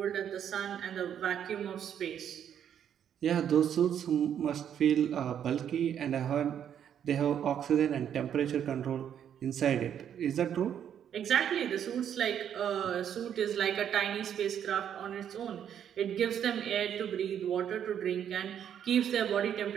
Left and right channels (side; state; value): left; quieter; 9.2 dB